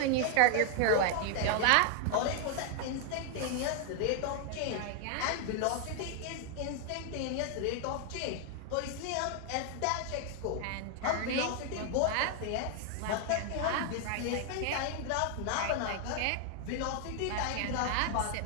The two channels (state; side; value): different; both; correlation 0.00